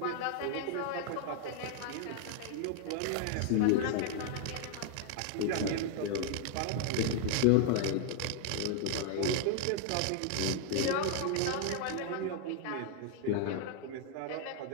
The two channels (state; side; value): different; both; correlation 0.00